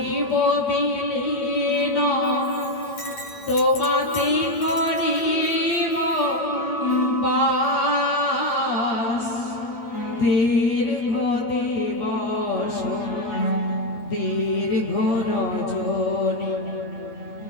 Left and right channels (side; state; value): right; late; 8.9 ms